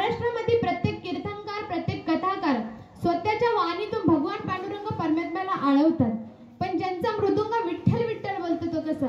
प्रत्येक तीर्थंकर, प्रत्येक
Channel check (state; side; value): identical; both; correlation 1.00